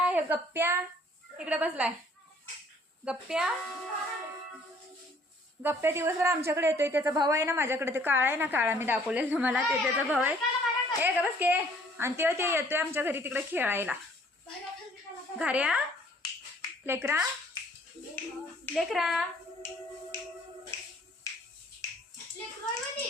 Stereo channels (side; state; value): both; normal; correlation 0.59